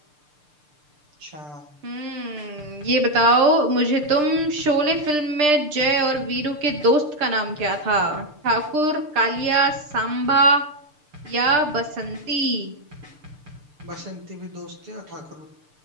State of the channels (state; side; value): late; left; 6.7 ms